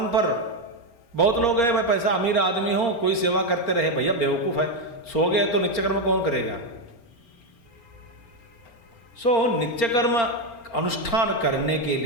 पर। बहुत लोग हैं, मैं पैसा अमीर आदमी हूं, कोई सेवा करते रहे। भैया बेवकूफ है, सो गए तो नित्य कर्म कौन करेगा? नित्य कर्म अनुष्ठान करने के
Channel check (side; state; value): right; late; 4.3 ms